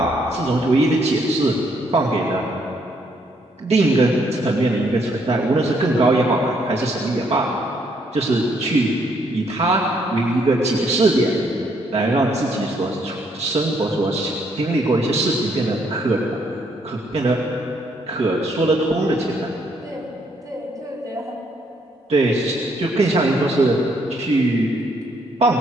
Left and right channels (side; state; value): both; normal; correlation 0.71